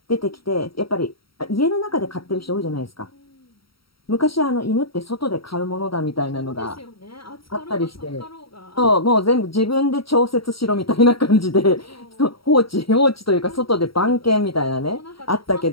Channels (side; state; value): right; late; 0.75 ms